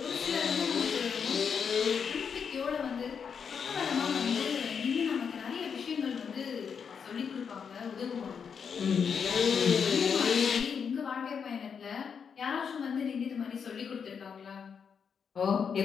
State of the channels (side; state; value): right; quieter; 6.7 dB